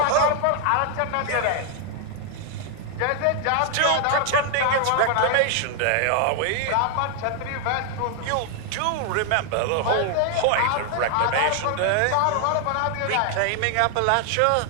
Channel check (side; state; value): both; different; correlation 0.00